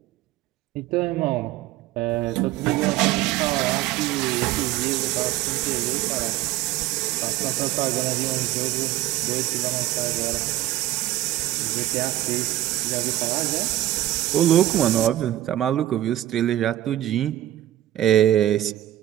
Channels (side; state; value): left; quieter; 14.2 dB